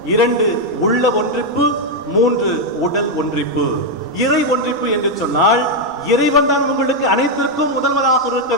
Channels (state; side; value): normal; both; correlation 0.01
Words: 2 உள்ள ஒன்றிப்பு, 3 உடல் ஒன்றிப்பு. இறை ஒன்றிப்பு என்று சொன்னால் இறைவன் தான் உங்களுக்கு அனைத்திற்கும் முதல்வராக இருக்க